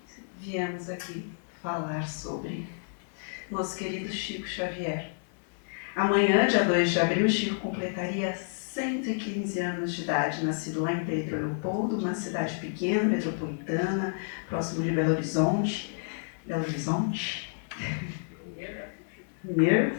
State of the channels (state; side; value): silent; right; digital silence